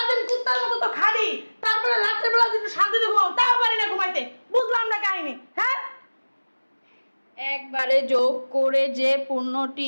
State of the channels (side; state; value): both; inverted; correlation -1.00